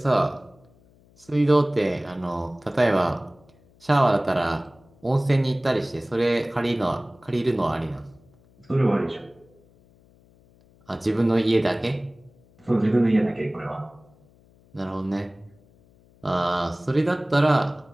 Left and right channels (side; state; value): left; noise; hum, 30 dB below the sound